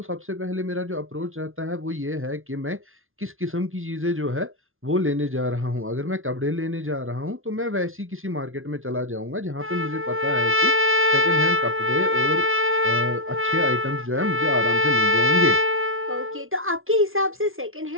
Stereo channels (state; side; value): late; left; 0.60 ms